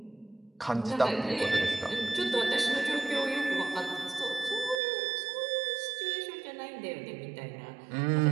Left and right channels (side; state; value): left; drops out; at 4.8 s